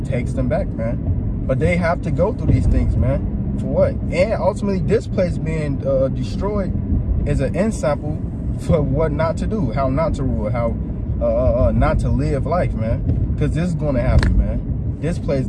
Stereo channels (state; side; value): identical; both; correlation 1.00